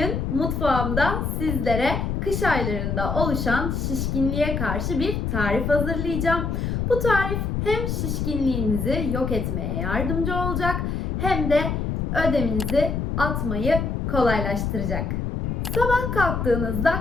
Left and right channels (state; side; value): noise; left; rumble, 1 dB below the sound